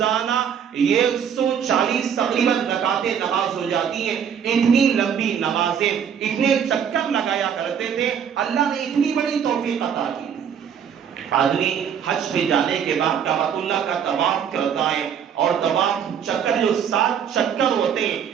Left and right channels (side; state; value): left; quieter; 8.0 dB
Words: 140 تقریباً رکعتیں نماز ہو جاتی ہیں۔ اتنی لمبی نمازیں، اتنے چکر لگایا کرتے تھے، اللہ نے اتنی بڑی توفیق عطا کی۔ آدمی حج پہ جانے کے بعد کعبۃ اللہ کا طواف کرتا ہے، اور طواف چکر جو 7 چکر ہوتے ہیں،